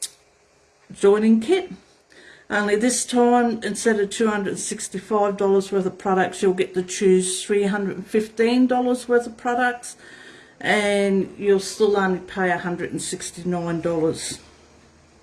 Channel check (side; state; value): both; identical; correlation 1.00